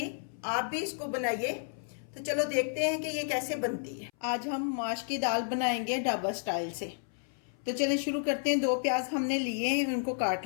आप भी इसको बनाइए। तो चलो देखते हैं कि ये कैसे बनती है। आज हम माश की दाल बनाएंगे ढाबा स्टाइल से। तो चलिए शुरू करते हैं। 2 प्याज हमने लिए हैं, उनको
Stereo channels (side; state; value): right; silent; 57 dB below the other